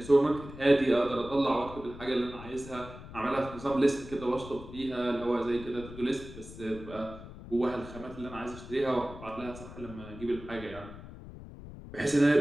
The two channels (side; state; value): left; noise; rumble, 14 dB below the sound